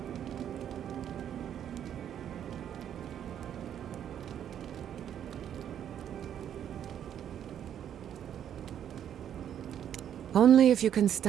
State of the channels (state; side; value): quieter; left; 9.7 dB